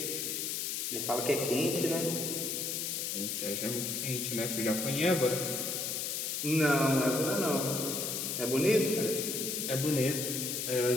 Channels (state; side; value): noise; left; hiss, 2 dB below the sound